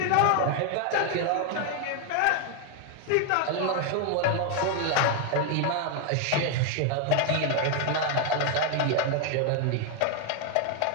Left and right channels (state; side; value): different; both; correlation 0.01